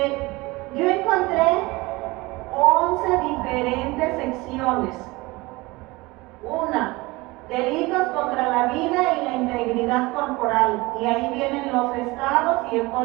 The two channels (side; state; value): left; quieter; 22.4 dB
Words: Yo encontré 11 diferentes secciones. Una, delitos contra la vida y la integridad corporal. Y ahí vienen los estados y el